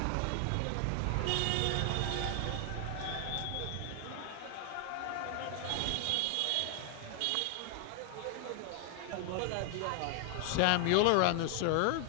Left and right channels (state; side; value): different; both; correlation 0.00